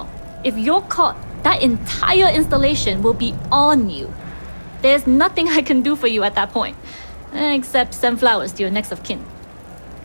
If you're caught, that entire installation will be on you. There's nothing I can do for you at that point, except send flowers to your next of kin.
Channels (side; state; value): both; inverted; correlation -1.00